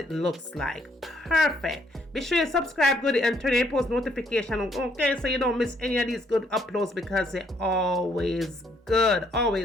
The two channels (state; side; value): normal; both; correlation 0.69